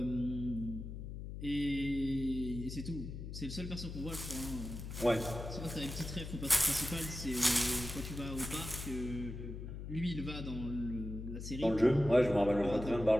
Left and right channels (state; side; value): noise; left; hum, 8 dB below the sound